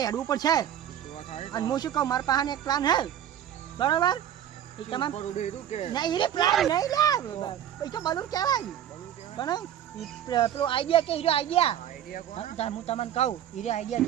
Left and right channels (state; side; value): quieter; left; 10.5 dB